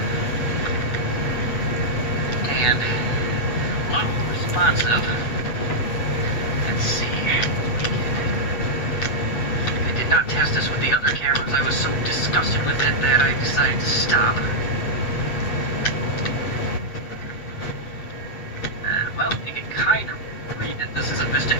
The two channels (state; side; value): late; right; 8.0 ms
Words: And a lot more responsive. Let's see. I did not test this with the other cameras. I was so disgusted with it that I decided to stop. Well, you can kind of read that this is a Vista